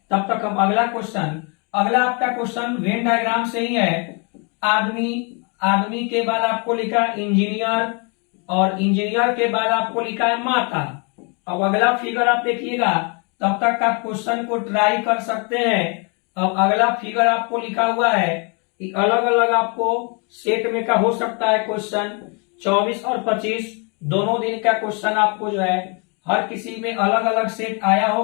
तब तक हम अगला क्वेश्चन, अगला आपका क्वेश्चन वेन डायग्राम से ही है। आदमी, आदमी के बाद आपको लिखा इंजीनियर, और इंजीनियर के बाद आपको लिखा है माता। अब अगला फिगर आप देखिएगा, तब तक आप क्वेश्चन को ट्राई कर सकते हैं। अब अगला फिगर आपको लिखा हुआ है कि अलग अलग आपको सेट में का हो सकता है क्वेश्चन, 24 और 25 दोनों दिन का क्वेश्चन आपको जो है हर किसी में अलग अलग सेट आया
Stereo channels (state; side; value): quieter; right; 34.5 dB